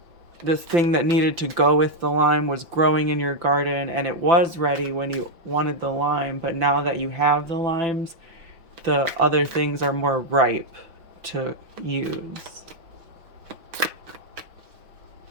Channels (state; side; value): late; left; 5.6 ms